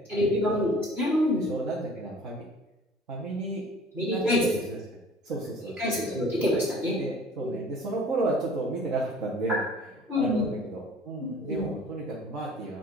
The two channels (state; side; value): normal; both; correlation 0.48